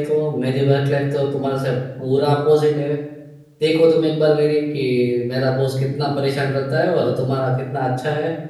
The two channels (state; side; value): identical; both; correlation 1.00